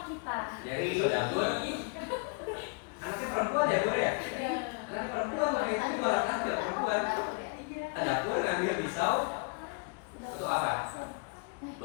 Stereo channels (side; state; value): right; quieter; 32.1 dB